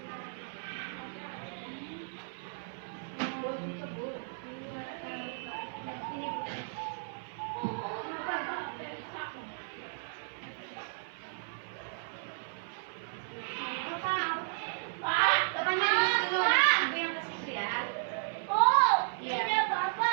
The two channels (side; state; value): left; silent; 55 dB below the other